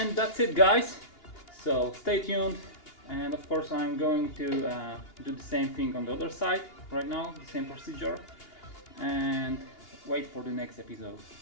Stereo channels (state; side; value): late; right; 2.8 ms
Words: That's it, guys, so stay tuned, and of course I'm going to do the same thing on the other side right now, the same procedure, and wait for the next episode.